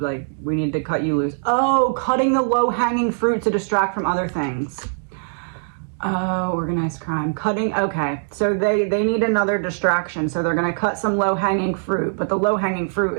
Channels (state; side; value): silent; left; digital silence